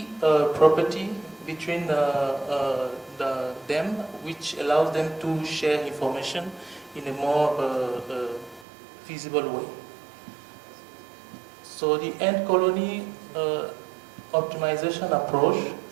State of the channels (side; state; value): left; drops out; at 8.7 s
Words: property between them which allows them to share information in a more feasible way. So the end colony optimization approach